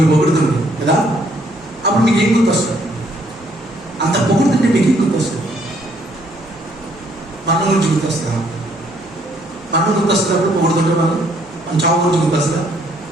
పొగుడుతుంది కదా. అప్పుడు మీకు ఏం గుర్తొస్తుంది? అంత పొగుడుతుంటే మీకు ఏం గుర్తొస్తుంది? మరణం గురించి గుర్తొస్తుందా? మరణం గుర్తొస్తుంది. అప్పుడు పొగుడుతుంటే మనం చావు గురించి గుర్తొస్తుందా?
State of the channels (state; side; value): noise; right; hum, 29 dB below the sound